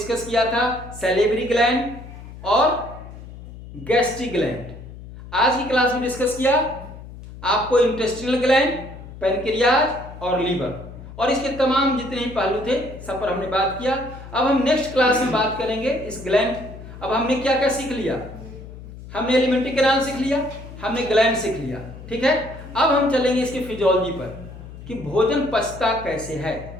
किया था सैलिवरी ग्लैंड और गैस्ट्रिक ग्लैंड। आज की क्लास में डिस्कस किया आपको इंटेस्टिनल ग्लैंड, पैनक्रियाज और लीवर, और इसके तमाम जितने ही पहलू थे सब पर हमने बात किया। अब हम नेक्स्ट क्लास में बात करेंगे इस ग्लैंड। अब हमने क्या क्या सीख लिया? हमने एलिमेंट्री कैनाल सीख लिया, हमने ग्लैंड सीख लिया। ठीक है, अब हम चलेंगे इसकी फिजियोलॉजी पर कि भोजन पचता कैसे है,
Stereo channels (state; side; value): noise; left; hum, 14 dB below the sound